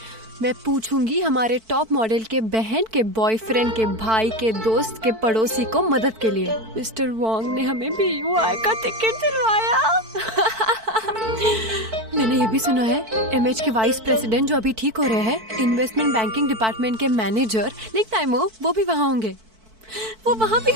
मैं पूछूंगी हमारे टॉप मॉडल के बहन के बॉयफ्रेंड के भाई के दोस्त के पड़ोसी को मदद के लिए। मिस्टर वॉन्ग ने हमें BUI का टिकट दिलवाया। मैंने ये भी सुना है एमएच के वाइस प्रेसिडेंट जो अभी ठीक हो रहे हैं, इन्वेस्टमेंट बैंकिंग डिपार्टमेंट के मैनेजर लिंक टाइमो, वो भी वहाँ होंगे। वो वहाँ भी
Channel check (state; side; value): late; left; 4.5 ms